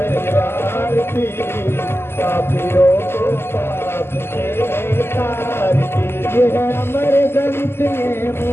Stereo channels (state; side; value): late; right; 0.12 ms